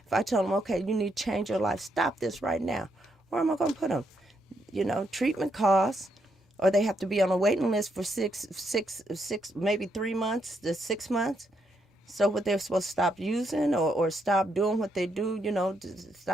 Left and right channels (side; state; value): both; normal; correlation 0.77